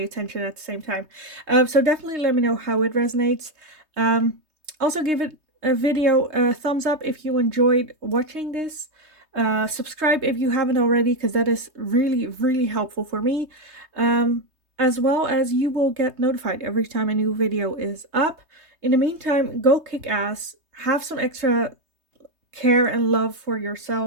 at the same time. So definitely let me know how it resonates. Um, Also give it a video a thumbs up if you enjoyed watching this. Subscribe if you haven't already because that is really, really helpful for me. As well as you will get notified every time a new video is up. In the meantime, go kick ass, have some extra care and love for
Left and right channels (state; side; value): late; left; 3.2 ms